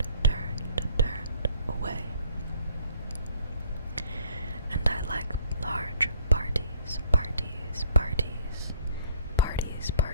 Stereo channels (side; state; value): both; inverted; correlation -0.58